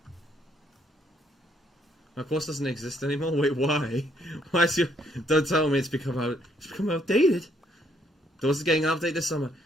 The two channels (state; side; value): normal; both; correlation 0.69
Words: My course doesn't exist anymore? Wait, why? Why is your... Don't tell me it's become outdated. Doors is getting an update this summer.